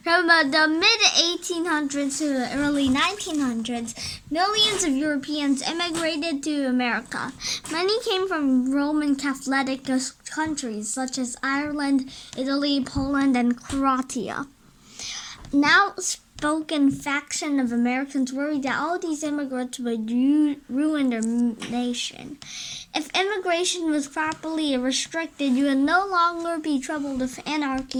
From the mid-1800s to the early 1900s, millions of Europeans immigrated to America. Many came from Roman Catholic countries such as Ireland, Italy, Poland, and Croatia. Now spoken faction of Americans worried that all these immigrants would ruin their nation. If immigration was properly restricted, you would no longer be troubled with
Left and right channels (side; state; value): both; identical; correlation 1.00